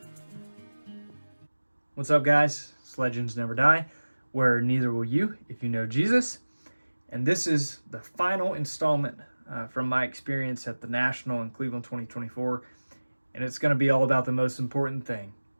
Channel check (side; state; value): both; inverted; correlation -1.00